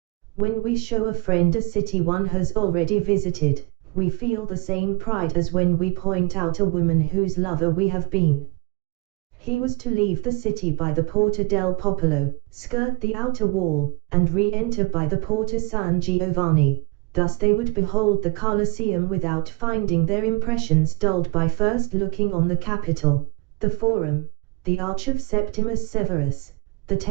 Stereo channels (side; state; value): left; quieter; 25.2 dB